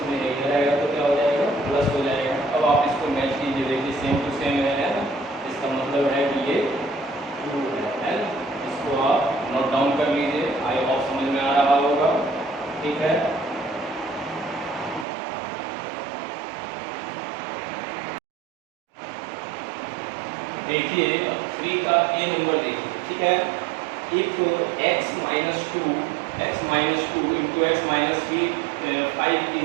में इधर आएगा तो क्या हो जाएगा, प्लस हो जाएगा। अब आप इसको मैच कीजिए, देखिए सेम टू सेम है ना, इसका मतलब है कि ये ट्रू है। इसको आप नोट डाउन कर लीजिए, आई होप समझ में आ रहा होगा। ठीक है, देखिए अब 3 का ए नंबर देखिए। ठीक है, if x minus two into x minus 5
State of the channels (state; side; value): drops out; left; at 15.1 s